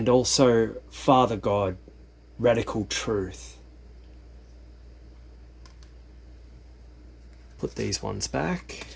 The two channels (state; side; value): identical; both; correlation 1.00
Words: also Father God, radical truth. Put these ones back.